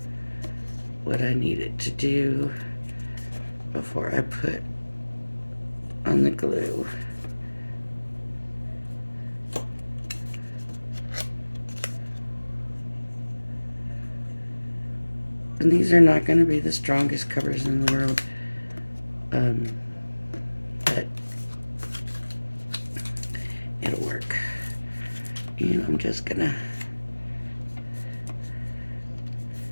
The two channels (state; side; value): inverted; both; correlation -1.00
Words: what I need it to do before I put on the glue. And these are not going to be the strongest covers in the world, but it'll work. And I'm just gonna